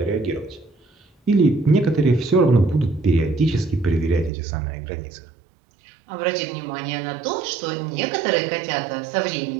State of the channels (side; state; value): left; drops out; at 4.3 s